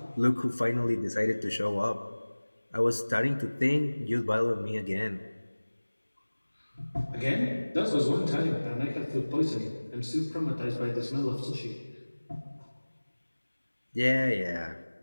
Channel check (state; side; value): inverted; both; correlation -1.00